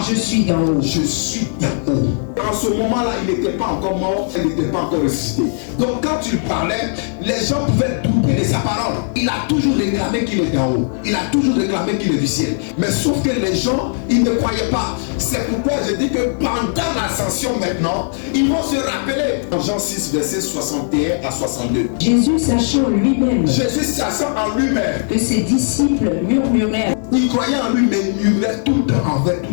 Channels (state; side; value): silent; right; 66 dB below the other